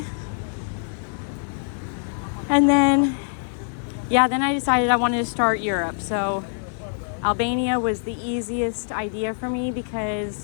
And then, yeah, then I decided I wanted to start Europe. So Albania was the easiest idea for me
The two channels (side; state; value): right; silent; digital silence